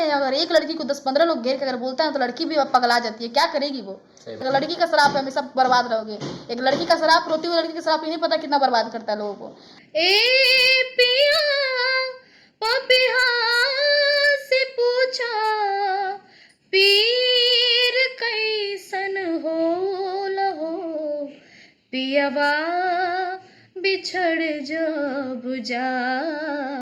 अगर एक लड़की को 10-15 लोग घेर के अगर बोलता है तो लड़की भी पगला जाती है। क्या करेगी वो? अगर लड़की का शराब है हमेशा बर्बाद रहोगे। एक लड़की का शराब, रोती हुई लड़की का शराब नहीं पता कितना बर्बाद करता है लोगों को। ए पिया पपिहा से पूछा पीर कैसन हो लहो, पियवा बिछड़ जब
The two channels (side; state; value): both; identical; correlation 1.00